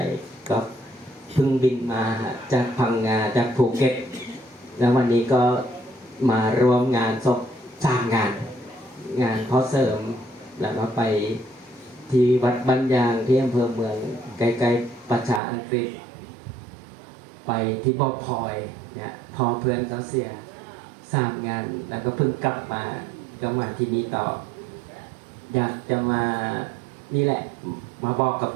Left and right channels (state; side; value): drops out; left; at 15.4 s